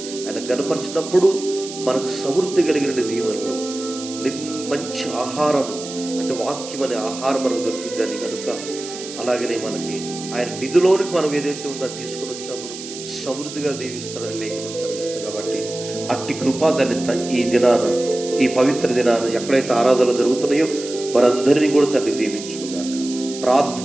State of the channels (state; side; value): noise; right; hiss, 11 dB below the sound